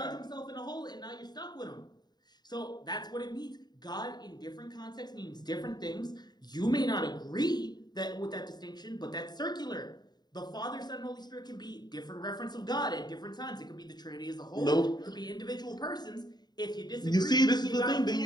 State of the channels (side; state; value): right; late; 0.20 ms